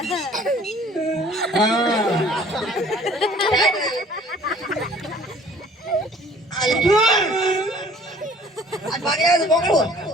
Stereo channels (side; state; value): both; normal; correlation 0.53